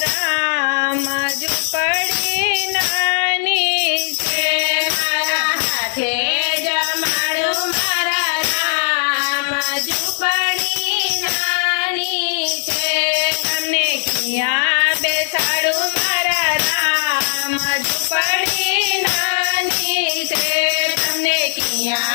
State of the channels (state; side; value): silent; right; digital silence